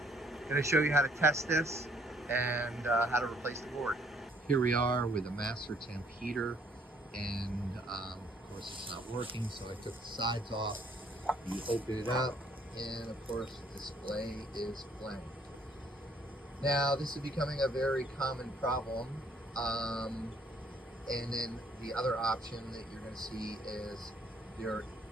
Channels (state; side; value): normal; both; correlation 0.64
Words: I'm going to show you how to test this and how to replace the board. Here we are with a MasterTemp heater, and of course it's not working, so I took the sides off. You open it up, and of course the display is blank. Now this is becoming a very common problem, and then the other option that you're going to see is there